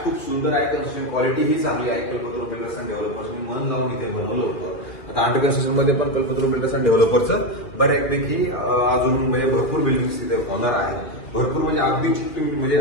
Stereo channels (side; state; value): right; late; 2.4 ms